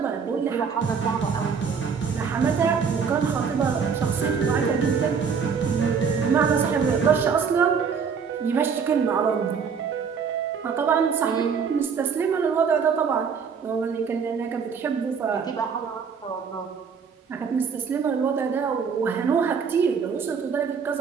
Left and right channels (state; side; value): quieter; left; 6.1 dB